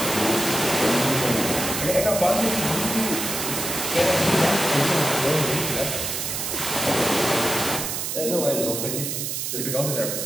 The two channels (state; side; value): noise; right; hiss, 3 dB below the sound